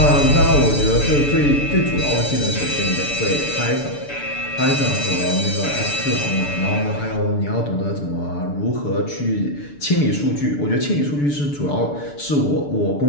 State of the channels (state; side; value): late; right; 6.9 ms